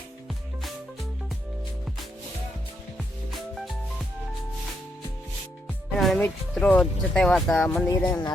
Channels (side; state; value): both; normal; correlation 0.78